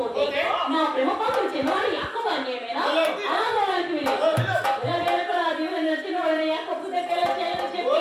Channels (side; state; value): both; identical; correlation 1.00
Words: నా ప్రేమ పాత్ర చిన్నవాడి అక్కవాడిని ఏమైనా అనాథవాడికి చిన్నవాడిని అక్కపుతే చెప్పి